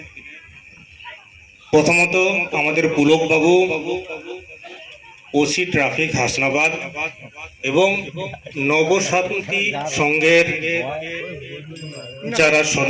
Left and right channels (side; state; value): both; identical; correlation 1.00